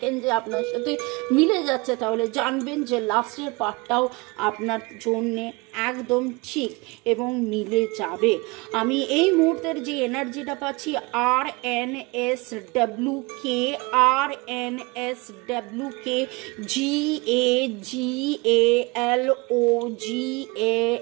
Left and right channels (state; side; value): quieter; left; 25.7 dB